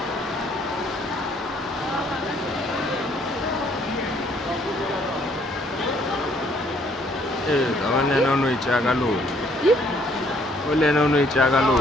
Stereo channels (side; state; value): both; normal; correlation 0.65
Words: Kawan yang nonu icaga lu. Oleh nonu icaga lu.